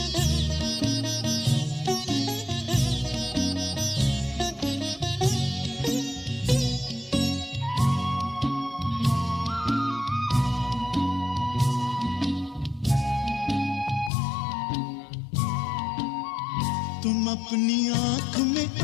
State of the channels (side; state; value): right; drops out; at 14.1 s